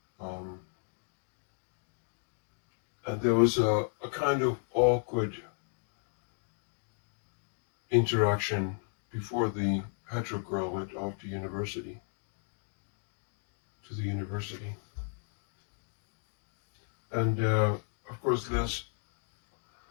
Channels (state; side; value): silent; right; 55 dB below the other